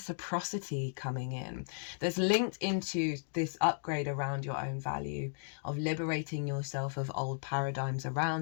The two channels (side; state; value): right; silent; digital silence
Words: coming in. That's linked into this upgrade around your own value, of liberating yourself of old paradigms